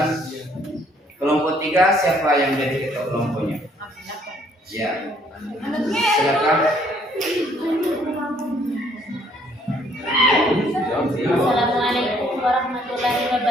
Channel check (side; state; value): both; normal; correlation 0.64